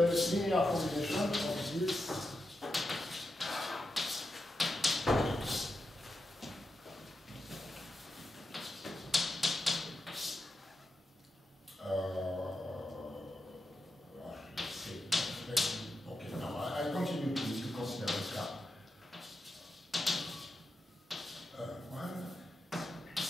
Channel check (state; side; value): normal; both; correlation 0.88